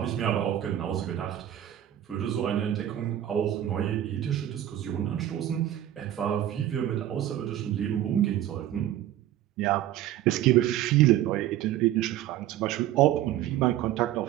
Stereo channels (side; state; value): left; quieter; 12.4 dB